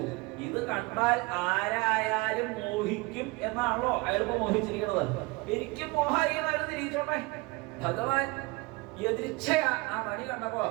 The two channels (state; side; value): quieter; left; 24.5 dB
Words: ഇത് കണ്ടാൽ ആരായാലും മോഹിക്കും എന്നാണല്ലോ അയാളിപ്പോ മോഹിച്ചിരിക്കുന്നത്. എനിക്കും മോഹായി അയാൾ തിരിച്ചോട്ടെ. ഭഗവാൻ എതിർച്ചയാ ആ മണി കണ്ടപ്പോ